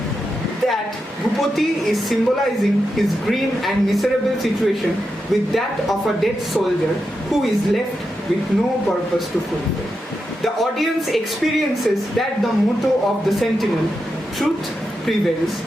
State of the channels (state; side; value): normal; both; correlation 0.87